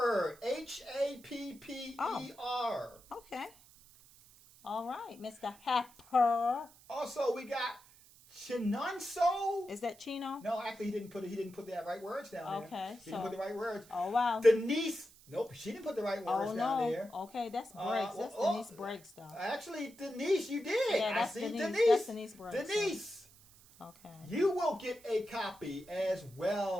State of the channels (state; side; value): noise; right; hiss, 24 dB below the sound